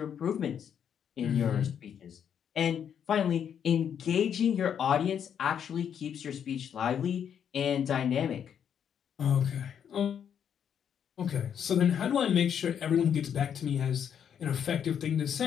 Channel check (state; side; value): quieter; right; 8.4 dB